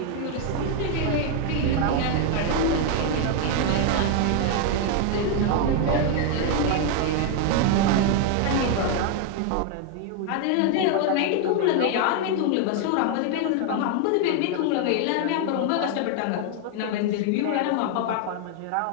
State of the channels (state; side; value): different; both; correlation 0.01